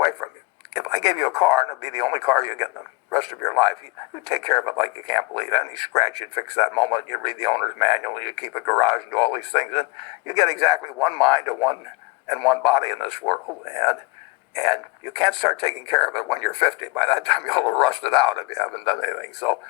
from you. If I gave you a car, and it'd be the only car you get in the rest of your life, you take care of it like you can't believe it. Any scratch, you'd fix that moment. You'd read the owner's manual. You keep a garage and do all these things, and you get exactly one mind and one body in this world. And you can't start taking care of it when you're 50. By that time, you'll have rusted out if you haven't done anything. So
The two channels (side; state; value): right; quieter; 24.6 dB